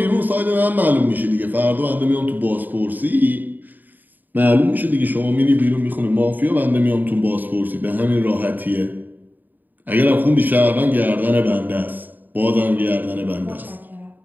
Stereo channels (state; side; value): late; left; 0.087 ms